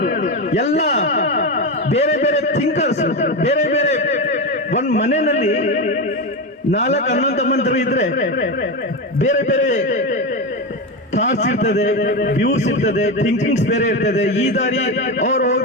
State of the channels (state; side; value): normal; both; correlation 0.15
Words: ಎಲ್ಲ ಬೇರೆ ಬೇರೆ ಥಿಂಕರ್ಸ್, ಬೇರೆ ಬೇರೆ ಒಂದ್ ಮನೆಯಲ್ಲಿ 4 ಅಣ್ಣ ತಮ್ಮಂದಿರು ಇದ್ರೆ ಬೇರೆ ಬೇರೆ ಥಾಟ್ಸ್ ಇರ್ತದೆ, ವ್ಯೂಸ್ ಇರ್ತದೆ, ಥಿಂಕಿಂಗ್ಸ್ ಬೇರೆ ಇರ್ತದೆ. ಈ ದಾರಿ ಅವ್ರು